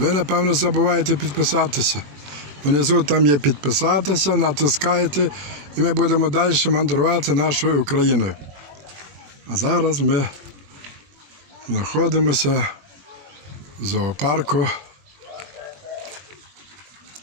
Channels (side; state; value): left; late; 21 ms